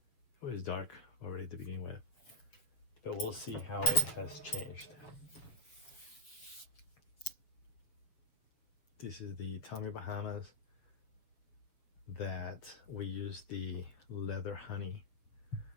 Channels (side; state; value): right; late; 7.2 ms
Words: It was dark already to begin with, but we'll see how it has changed. This is the Tommy Bahamas that we use the leather honey